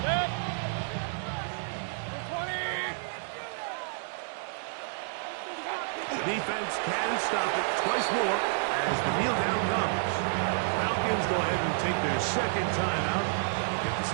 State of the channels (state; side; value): silent; left; digital silence